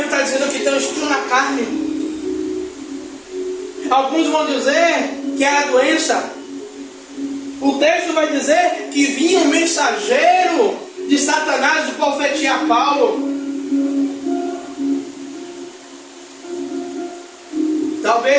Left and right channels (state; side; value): identical; both; correlation 1.00